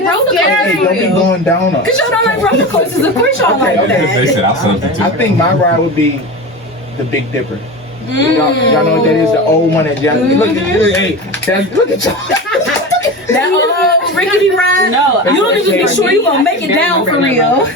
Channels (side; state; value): both; normal; correlation 0.27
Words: roller Hey, don't be coasters. going down us. Cause y'all don't like roller coasters. Of course y'all like Okay. They that. said I'll substitute. I think my ride would be the Big Dipper. Y'all know what that is? The old one that y'all look at. Hey, look at y'all. That old rickety ride. No, You don't even be sure you gonna make it down for real.